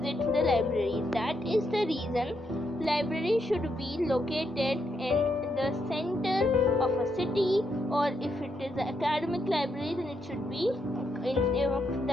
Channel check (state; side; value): normal; both; correlation 0.79